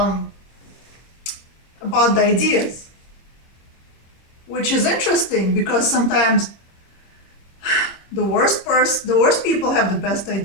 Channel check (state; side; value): late; right; 25 ms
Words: about the ideas. Which is interesting, because sometimes the worst people have the best